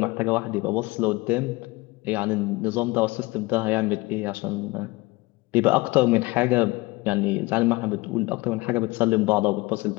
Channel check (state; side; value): quieter; right; 22.4 dB